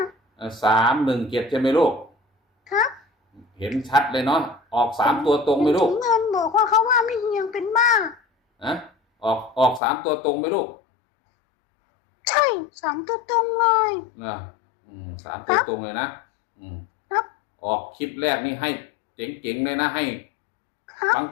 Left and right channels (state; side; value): drops out; right; at 9.8 s